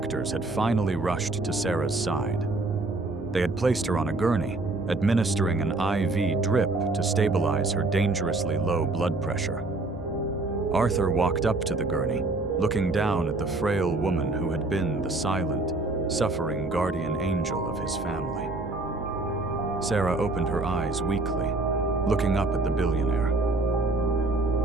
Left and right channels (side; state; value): left; quieter; 3.1 dB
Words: had finally rushed to Sarah's side. They had placed her on a gurney, administering an IV drip to stabilize her dangerously low blood pressure. Arthur walked up to the gurney, looking down at the frail woman who had been the silent, suffering guardian angel of his family. Sarah opened her eyes weakly, looking up at the billionaire.